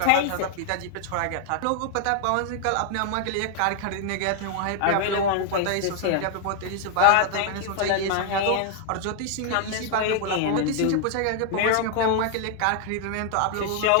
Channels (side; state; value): both; different; correlation 0.00